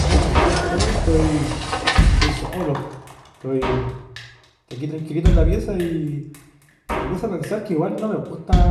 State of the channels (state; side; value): identical; both; correlation 1.00